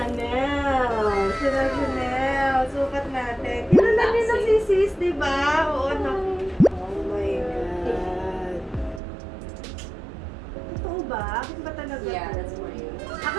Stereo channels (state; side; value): drops out; left; at 9.0 s